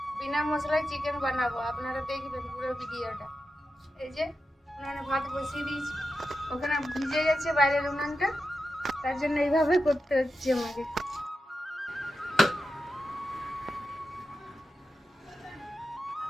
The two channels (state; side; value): normal; both; correlation 0.90